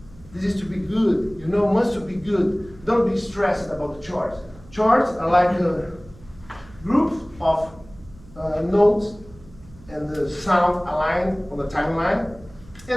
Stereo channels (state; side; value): noise; right; hum, 22 dB below the sound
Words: This is to be good, you know, must to be good. Don't be stressed about the charts. Charts are like a group of notes and the sound aligned on the timeline.